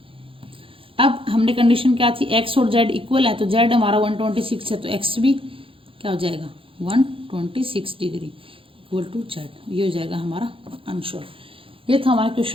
अब हमने कंडीशन क्या थी x और z इक्वल है, तो z हमारा 126 है तो x भी क्या हो जाएगा 126 डिग्री इक्वल टू z। ये हो जाएगा हमारा आंसर। ये था हमारा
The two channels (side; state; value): left; late; 0.26 ms